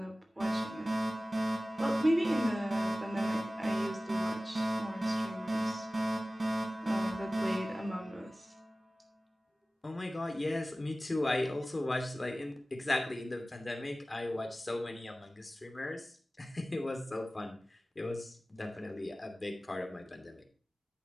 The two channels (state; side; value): normal; both; correlation 0.97